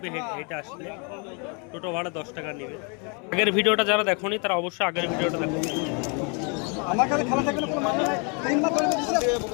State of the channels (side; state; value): right; quieter; 35.1 dB